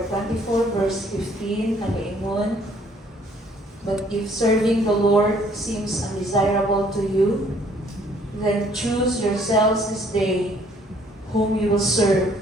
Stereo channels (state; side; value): normal; both; correlation 0.61